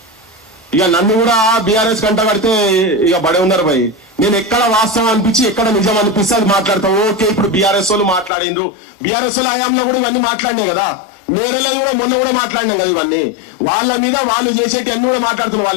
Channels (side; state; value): right; drops out; at 8.3 s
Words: ఇక నన్ను కూడా బీఆర్ఎస్ కంట కడితే ఇక బడే ఉన్నారు భయ్. నేను ఎక్కడ వాస్తవం అనిపించి ఎక్కడ నిజం అనిపిస్తే అది మాట్లాడతాం. ఓకే, ఇప్పుడు బీఆర్ఎస్ వాళ్ళు మాట్లాడిండ్రు, బీఆర్ఎస్ వాళ్ళ హయాంలో కూడా ఇవన్నీ మాట్లాడినాయి కదా, నేరలేదు కూడా మొన్న కూడా మాట్లాడినాం కదా. ఇవన్నీ వాళ్ళ మీద వాళ్ళు చేసేటి అన్ని కూడా మాట్లాడుతున్నారు.